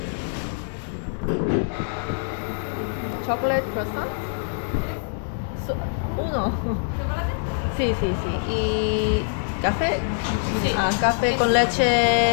chocolate croissant? Uno. Sí. ¿Y café? Sí. Café con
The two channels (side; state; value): right; silent; 62 dB below the other